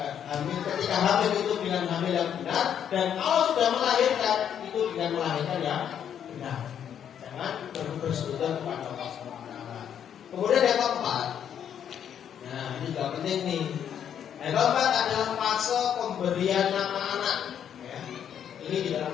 ketika hamil itu dengan hamil yang benar, dan kalau sudah melahirkan itu dengan melahirkan yang benar. Jangan bersekutu kepada Allah SWT. Kemudian yang keempat, nah ini juga penting nih. Yang keempat adalah fase pemberian nama anak. Ya. Ini di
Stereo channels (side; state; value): right; quieter; 9.0 dB